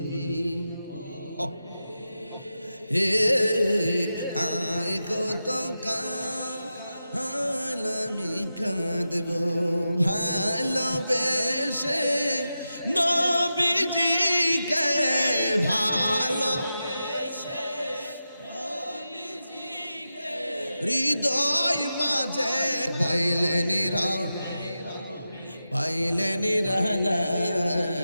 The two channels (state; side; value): inverted; both; correlation -0.91